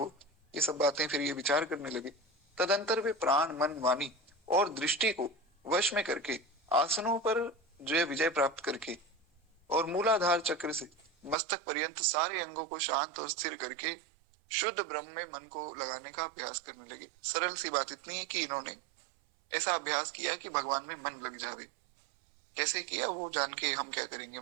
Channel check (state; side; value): drops out; left; at 11.4 s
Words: ये सब बातें फिर ये विचार करने लगे। तदंतर वे प्राण मन वाणी और दृष्टि को वश में करके आसनों पर जो है विजय प्राप्त करके और मूलाधार चक्र से मस्तक पर्यंत सारे अंगों को शांत और स्थिर करके शुद्ध ब्रह्म में मन को लगाने का अभ्यास करने लगे। सरल सी बात इतनी है कि इन्होंने ऐसा अभ्यास किया कि भगवान में मन लग जावे। कैसे किया वो जान के हम क्या करेंगे